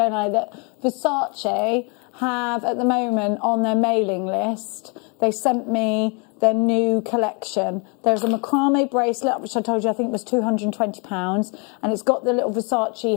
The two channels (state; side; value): quieter; right; 33.9 dB